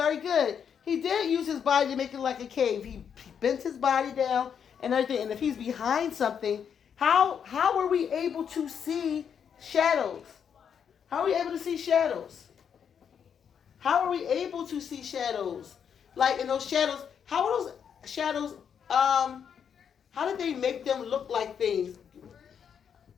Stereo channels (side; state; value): right; quieter; 7.7 dB